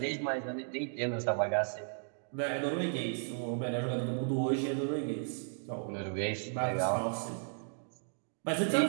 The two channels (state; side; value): silent; left; digital silence